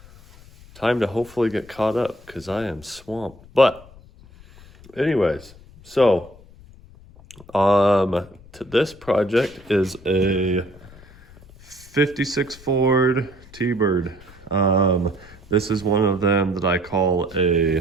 time to hopefully get caught up because I am swamped. But anyways, so this project is a 56 Ford T-Bird. This is one of them that I call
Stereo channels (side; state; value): left; noise; rumble, 22 dB below the sound